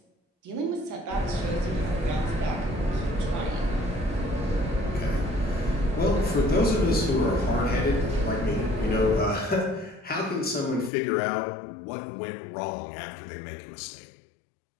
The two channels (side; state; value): right; drops out; at 10.9 s